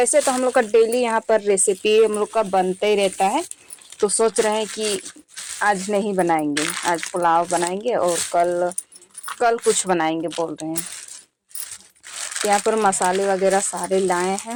तो हम लोग का डेली यहाँ पर रेसिपी हम लोग का बनते ही रहता है। तो सोच रहे हैं कि आज नहीं बनाएंगे, आज पुलाव बनाएंगे और कल कल कुछ बनाएंगे बोल रहे हैं। यहाँ पर मसाले वगैरह सारे लाए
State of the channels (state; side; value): identical; both; correlation 1.00